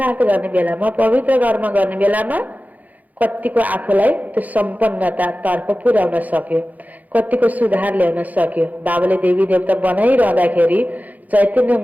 गर्ने बेलामा, पवित्र कर्म गर्ने बेलामा कतिको आफूलाई त्यो सम्पन्नता तर्फ पुर्याउन सक्यो, कतिको सुधार ल्याउन सक्यो। बाबाले देवी देवता बनाइरहँदाखेरि, चैतन्य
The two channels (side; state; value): left; late; 0.080 ms